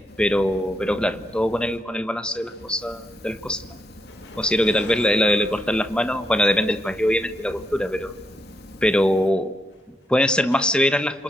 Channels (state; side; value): normal; both; correlation 0.79